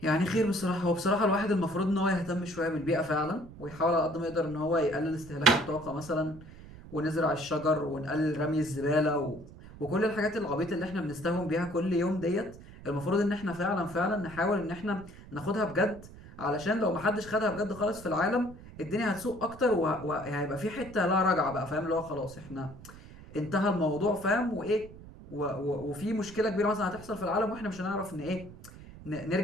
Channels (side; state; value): right; noise; rumble, 17 dB below the sound